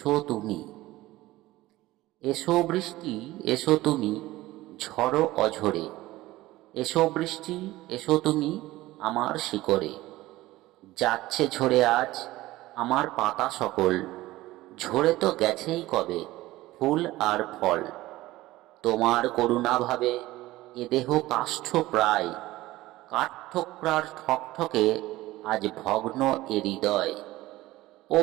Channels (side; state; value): left; quieter; 17.5 dB